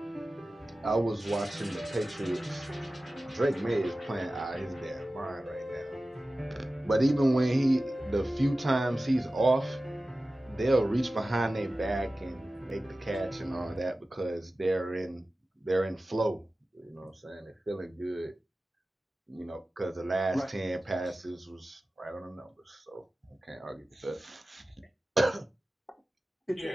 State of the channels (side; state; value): both; normal; correlation 0.96